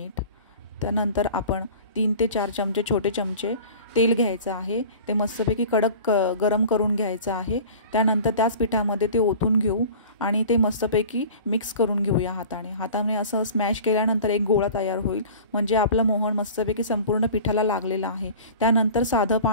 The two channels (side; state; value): both; inverted; correlation -0.41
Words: त्यानंतर आपण 3 ते 4 चमचे छोटे चमचे तेल घ्यायचं आहे. ते मस्तपैकी कडक गरम करून घ्यायचं आहे. त्यानंतर त्याच पिठामध्ये ते ओतून घेऊ आणि ते मस्तपैकी मिक्स करून घेऊया हाताने असं स्मॅश केल्यानंतर एक गोळा तयार होईल. म्हणजे आपलं मोहन मस्तपैकी संपूर्ण पिठाला लागलेलं आहे. त्यानंतर साधं